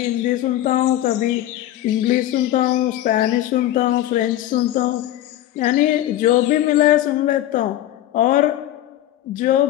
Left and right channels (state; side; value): quieter; right; 13.5 dB